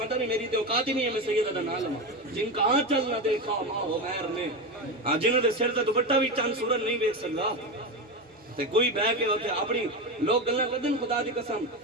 نہیں, میری تے اوقات ہی نہیں ہے میں سیدہ دا نام لواں. جن کہاں چلنا دیکھا ماں ہو مہر نے, جنہوں دے سر تے دوپٹہ بھی چند سورج نہیں دیکھ سکتا تے کوئی بہ کے اوتھے اپنی لوگ گلاں کردن. خدا دی قسم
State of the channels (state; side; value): normal; both; correlation 0.17